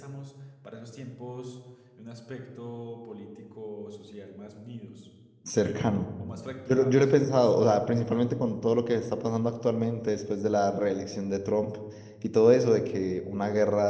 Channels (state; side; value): identical; both; correlation 1.00